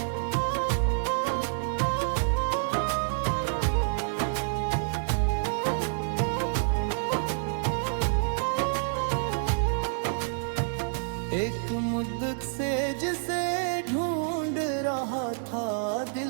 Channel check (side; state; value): left; silent; 57 dB below the other